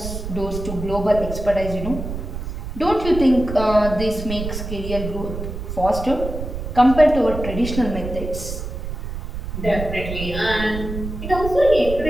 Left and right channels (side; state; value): right; noise; rumble, 6 dB below the sound